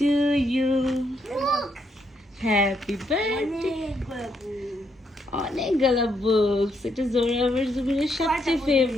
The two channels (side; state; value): both; normal; correlation 0.76